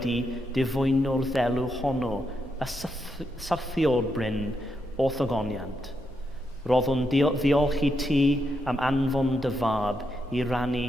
difwyno'r ddelw honno, y syrthiol bryn o thogoniant. Roddwn ddiolch i ti am anfon dy fab i rannu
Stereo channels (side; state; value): both; normal; correlation 0.82